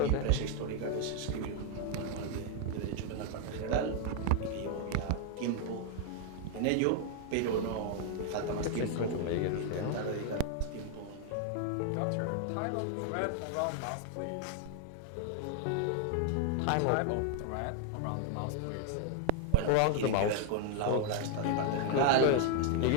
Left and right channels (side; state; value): both; different; correlation 0.00